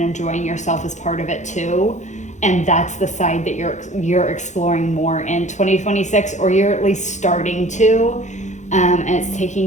yourself is part of it too. And that's the side that you're exploring more in 2026, or you're at least starting to, and it's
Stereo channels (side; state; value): right; late; 0.35 ms